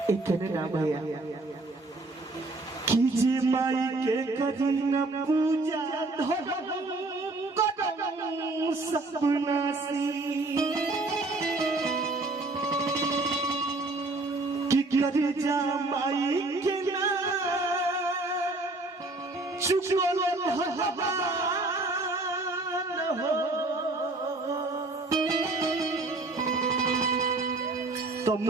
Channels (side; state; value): left; quieter; 3.1 dB